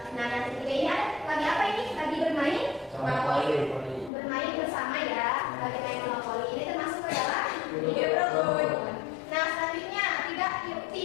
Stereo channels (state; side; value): drops out; right; at 4.1 s